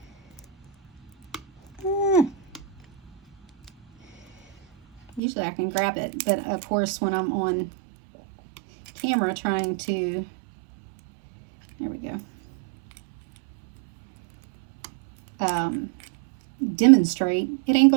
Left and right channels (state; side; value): drops out; left; at 5.2 s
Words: Usually I can grab it, but of course when I'm on camera trying to... There we go. Demonstrate, it ain't